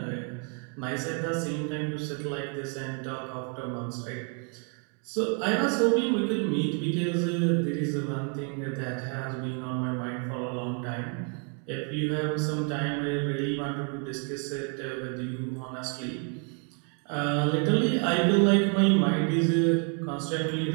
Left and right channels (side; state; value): left; quieter; 39.9 dB